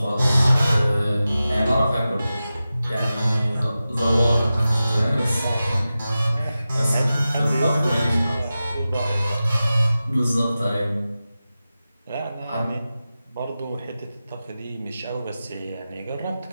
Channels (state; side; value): inverted; both; correlation -0.94